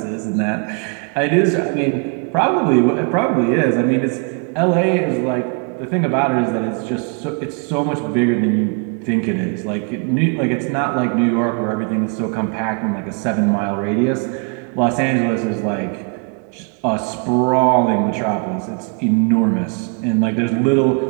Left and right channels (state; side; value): quieter; left; 38.4 dB